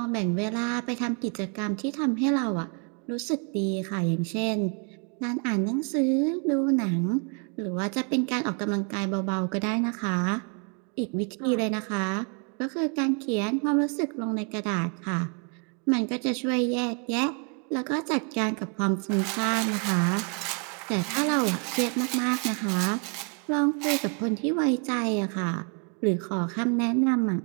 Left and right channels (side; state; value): left; quieter; 38.8 dB